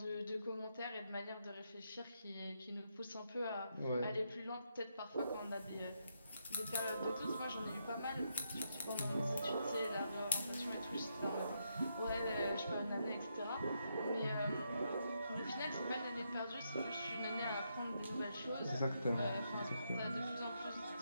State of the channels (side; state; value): both; inverted; correlation -0.80